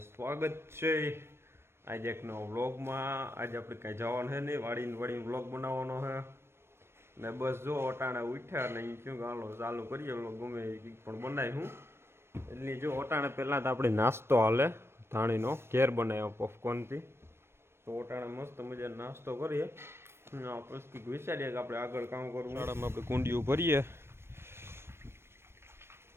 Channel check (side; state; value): left; late; 0.12 ms